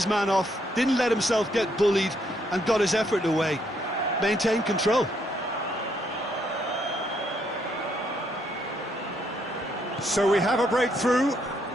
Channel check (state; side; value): normal; both; correlation 0.73